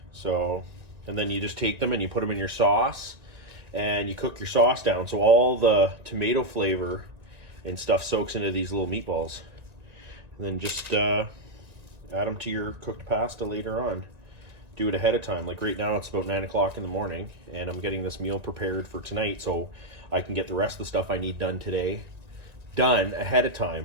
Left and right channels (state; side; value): late; left; 2.0 ms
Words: So, and then you just take them and you put them in your sauce and you cook your sauce down so all the tomato flavor and stuff soaks into these little meatballs, and then just add them to your cooked pasta later on. Do it ahead of time. Like right now it's about 9 o'clock in the morning and I'm getting this meal prepared for tonight so I can get the rest of the stuff I need done today done ahead of